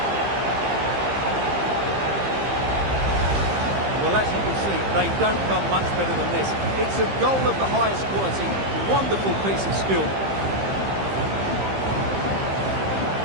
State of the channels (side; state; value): left; late; 15 ms